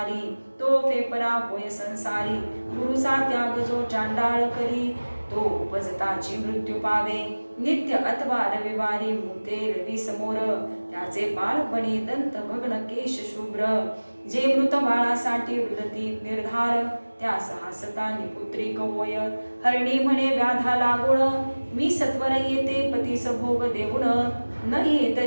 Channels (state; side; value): inverted; both; correlation -1.00